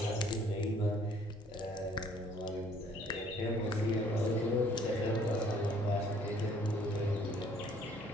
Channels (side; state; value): both; normal; correlation 0.60